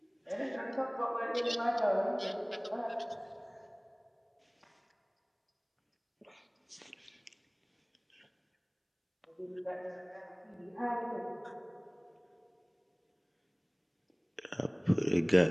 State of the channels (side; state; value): both; identical; correlation 1.00